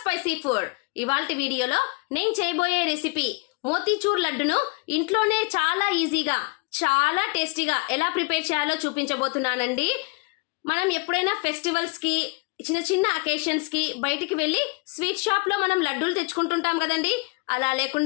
spicy food. ఇవాల్టి వీడియోలో నేను చేయబోయే రెసిపీ మోతీచూర్ లడ్డును ఇంట్లోనే చాలా ఈజీగా చాలా టేస్టీగా ఎలా ప్రిపేర్ చేయాలో చూపించబోతున్నానండి. మనం ఎప్పుడైనా ఫెస్టివల్స్ కి చిన్న చిన్న అకేషన్స్ కి బయటికి వెళ్ళి స్వీట్ షాప్ లో మనం లడ్డూలు తెచ్చుకుంటుంటాం కదండి. అలా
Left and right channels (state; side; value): quieter; right; 28.5 dB